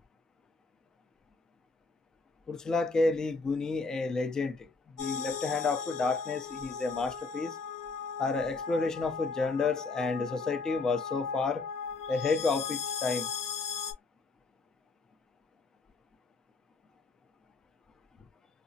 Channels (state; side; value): quieter; right; 3.9 dB